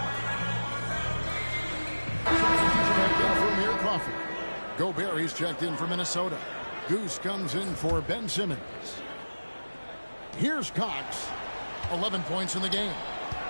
Gobert, he's checked in for Minnesota. Goose comes in for Ben Simmons. Here's Cox. 11 points in the game.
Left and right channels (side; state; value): both; inverted; correlation -1.00